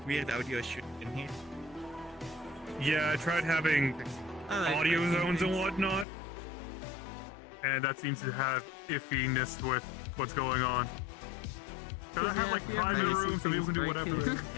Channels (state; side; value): drops out; right; at 6.1 s